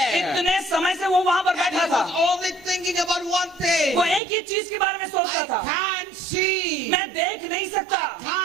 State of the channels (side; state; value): left; drops out; at 4.2 s